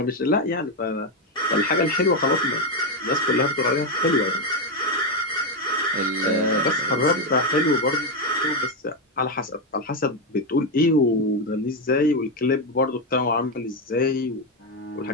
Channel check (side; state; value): both; normal; correlation 0.07